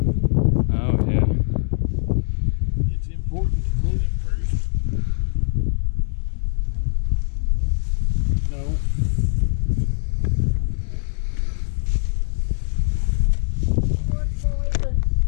Oh yeah. It's important to clean it first. No.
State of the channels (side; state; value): right; silent; digital silence